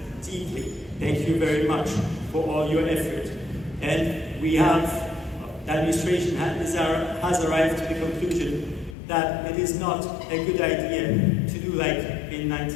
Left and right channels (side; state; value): right; drops out; at 9.0 s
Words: deeply. Thank you very much for all your effort. And we have, the administration has arrived to the conclusion that it is not a good idea to do like in